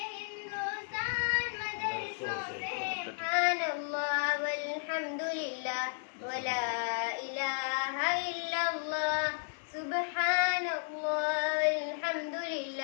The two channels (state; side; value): silent; right; 55 dB below the other